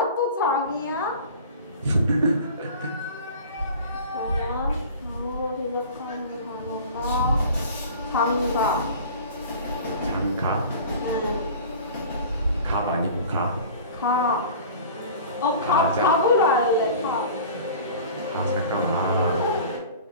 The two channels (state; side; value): inverted; both; correlation -0.40